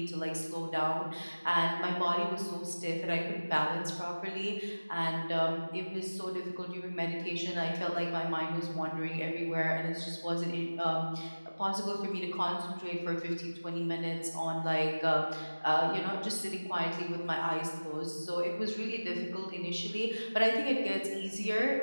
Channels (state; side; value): inverted; both; correlation -1.00